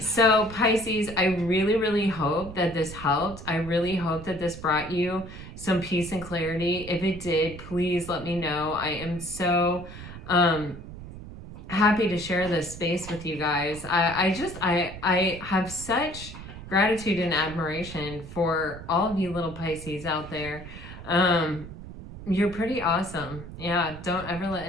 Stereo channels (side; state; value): right; noise; rumble, 13 dB below the sound